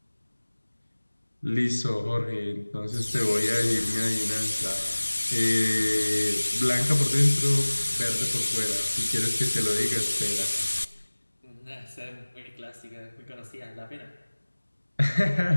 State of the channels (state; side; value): inverted; both; correlation -1.00